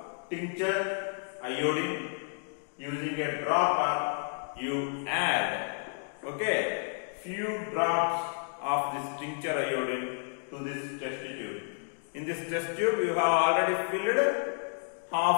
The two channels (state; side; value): silent; right; 57 dB below the other